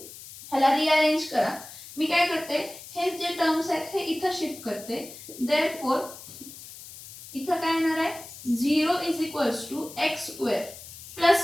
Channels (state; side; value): noise; left; hiss, 15 dB below the sound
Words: ह्याला रिअरेंज करा. मी काय करते, हे जे टर्म्स आहेत हे इथं शिफ्ट करते. therefore इथं काय येणार आहे? 0 is equals to x square